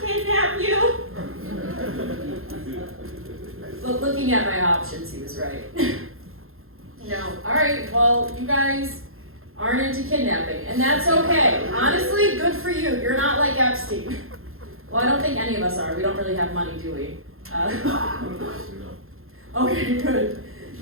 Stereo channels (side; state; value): left; late; 0.61 ms